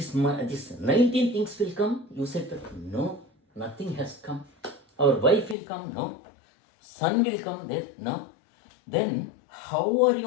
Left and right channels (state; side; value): drops out; right; at 5.6 s